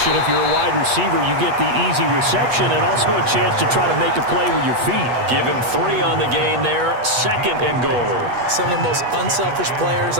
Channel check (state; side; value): late; left; 8.3 ms